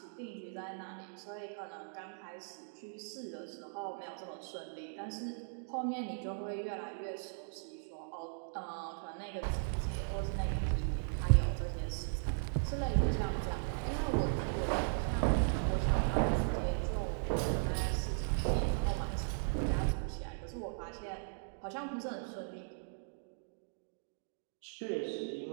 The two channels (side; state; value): left; silent; digital silence